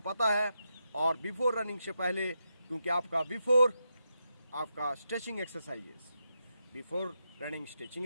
है। और बिफोर रनिंग से पहले, क्योंकि आपका stretching exercises, before running stretching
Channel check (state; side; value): inverted; both; correlation -0.85